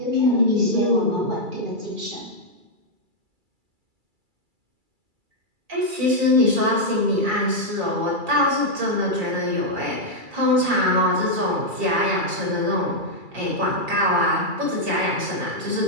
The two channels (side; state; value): left; late; 2.3 ms